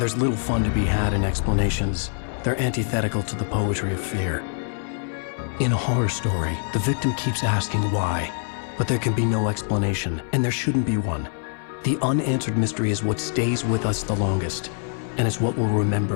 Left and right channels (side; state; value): right; silent; 62 dB below the other